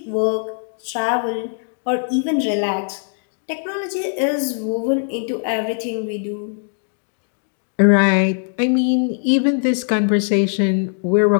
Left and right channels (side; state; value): right; silent; digital silence